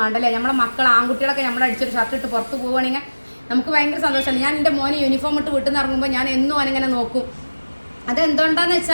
വേണ്ടല്ലേ. നമ്മളെ മക്കൾ ആൺകുട്ടികളൊക്കെ നമ്മൾ അടിച്ചൊരു ഷർട്ട് ഇട്ട് പുറത്ത് പോവുകയാണെങ്കിൽ നമുക്ക് ഭയങ്കര സന്തോഷമല്ലേ. ഞാൻ എൻ്റെ മോനെ യൂണിഫോം ഇട്ട് വീട്ടിൽ നിന്ന് ഇറങ്ങുമ്പോൾ ഞാൻ എന്നും അവനിങ്ങനെ നോക്കും. അതെന്തുകൊണ്ടാന്ന്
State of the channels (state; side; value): inverted; both; correlation -1.00